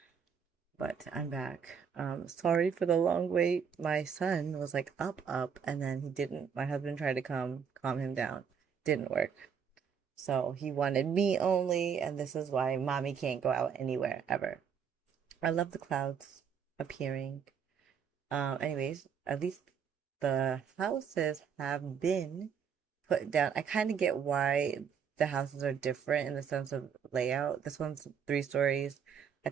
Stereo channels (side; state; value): left; quieter; 7.1 dB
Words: but I'm back. Sorry for the long wait. My son was like up, and then he didn't. My husband tried to calm him down. Didn't work. So he wanted me only, and this is why mommy can't go out anywhere ever. I love the clouds appearing. Anyways, at least the houses have been put down. I kind of get why the houses are different in the sense of layout. This one's 3 stories. I